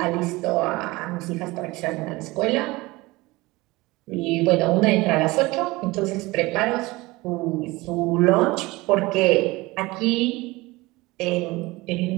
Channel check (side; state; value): left; quieter; 21.4 dB